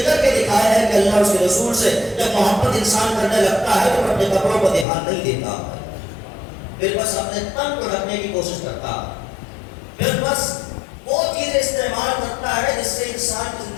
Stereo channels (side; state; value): right; drops out; at 4.9 s